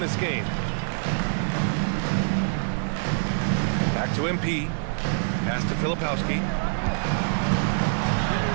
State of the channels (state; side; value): silent; left; digital silence